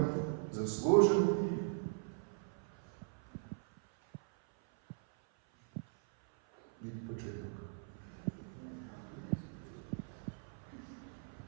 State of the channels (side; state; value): left; silent; 51 dB below the other